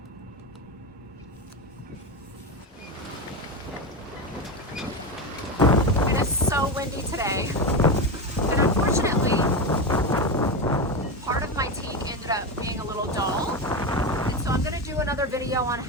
It is so windy today, and unfortunately, part of my teak ended up being a little dull. And so I'm gonna do another video on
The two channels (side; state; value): both; normal; correlation 0.17